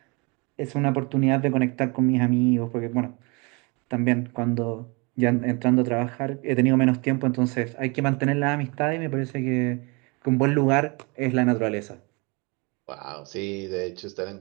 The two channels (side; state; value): left; quieter; 29.2 dB